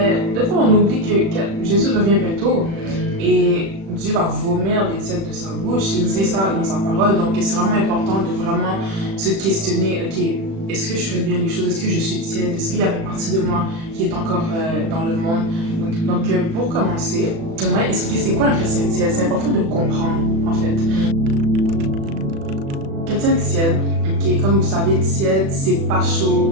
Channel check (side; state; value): left; late; 36 ms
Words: des fois, on oublie que Jésus revient bientôt et Dieu va vomir les tièdes de sa bouche. Il dit ça dans sa parole. Donc, c'est vraiment important de vraiment se questionner, ok, est-ce que je fais bien les choses? Est-ce que je suis tiède? Est-ce qu'il y a une partie de moi qui est encore dans le monde? Donc, pour commencer, j'aimerais expliquer c'est quoi un chrétien tiède. C'est important de comprendre, en fait. Chrétien tiède, okay, comme vous savez, tiède, c'est pas